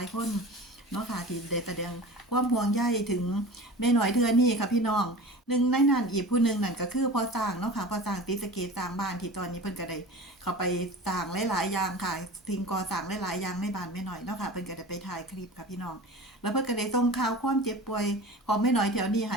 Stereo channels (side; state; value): both; normal; correlation 0.35